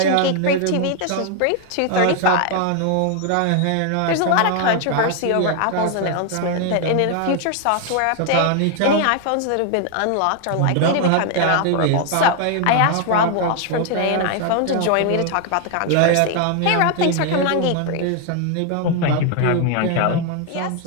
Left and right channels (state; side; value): different; both; correlation 0.00